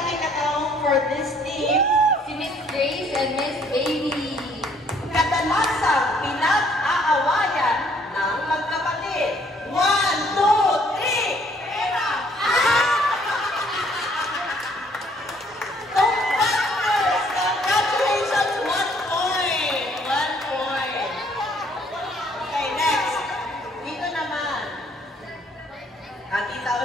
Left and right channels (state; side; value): normal; both; correlation 0.63